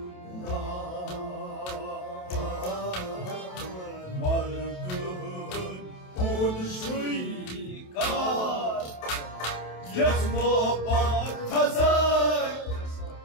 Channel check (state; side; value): late; right; 27 ms